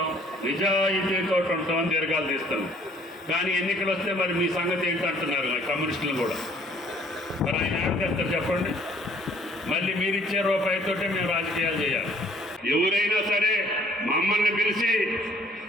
నిజాయితీతో ఉంటాం అని దీర్ఘాలు తీస్తాం. కానీ ఎన్నికలు వస్తే మరి మీ సంగతి ఏంటంటున్నారు కమ్యూనిస్టులు కూడా. మరి ఆయన ఏం చేస్తారు చెప్పండి? మళ్ళీ మీరిచ్చే రూపాయితోటే మేము రాజకీయాలు చేయాలి. ఎవరైనా సరే మమ్మల్ని పిలిచి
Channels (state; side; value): normal; both; correlation 0.58